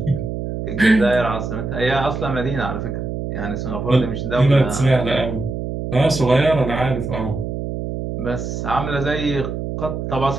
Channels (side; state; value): right; noise; hum, 5 dB below the sound